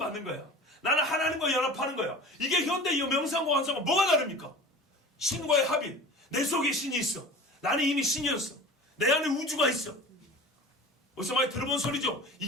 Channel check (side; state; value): both; normal; correlation 0.38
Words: 거야. 나는 하나님과 연합하는 거야. 이게 현대 이 명상과 관상과 뭐가 다릅니까? 신과의 합일. 내 속에 신이 있어. 나는 이미 신이었어. 내 안에 우주가 있어. 어디서 많이 들어본 소리죠?